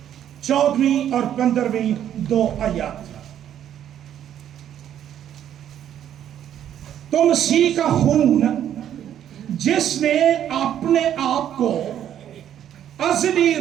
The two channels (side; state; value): left; quieter; 10.4 dB